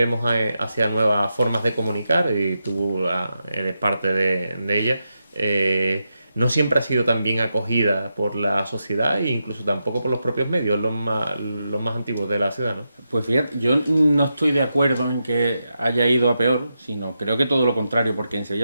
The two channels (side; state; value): both; inverted; correlation -0.87